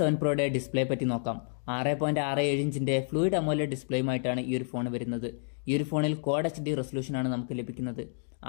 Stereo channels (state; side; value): silent; right; digital silence